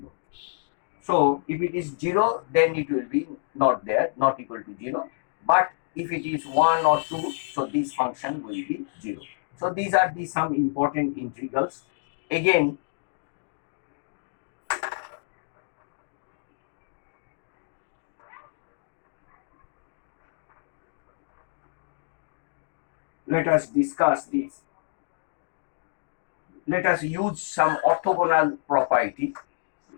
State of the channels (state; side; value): silent; right; digital silence